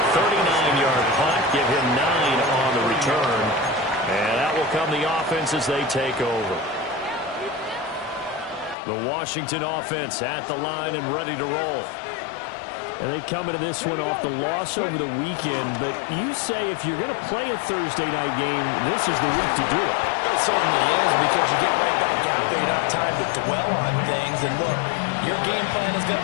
39-yard punt, give him 9 on the return. And that will come the offense as they take over. The Washington offense at the line and ready to roll. And they come into this one off the loss over the weekend, but you say if you're going to play a Thursday night game, this is the week to do it. It certainly is, because you get right back out there. You don't have time to dwell on things. And look, your game plan is going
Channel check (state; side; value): drops out; right; at 8.8 s